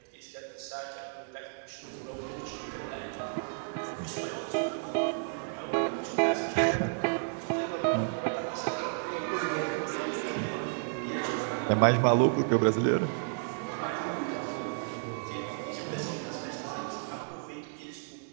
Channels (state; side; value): silent; left; digital silence